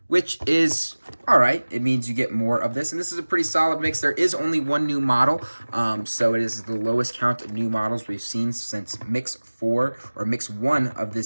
which is all right. It means you get more of this, and this is a pretty solid mix. There is only one new model, so it is the lowest count of new models we've seen since Mix 4 or Mix 1 of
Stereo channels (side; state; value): both; inverted; correlation -1.00